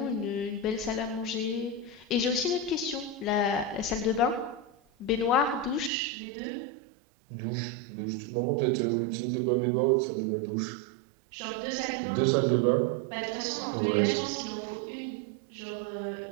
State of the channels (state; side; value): drops out; left; at 5.9 s